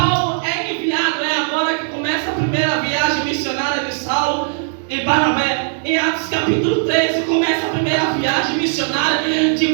é enviado, é agora que começa a primeira viagem missionária de Saulo e Barnabé. Em Atos capítulo 13 começa a primeira viagem missionária de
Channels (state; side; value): silent; left; 66 dB below the other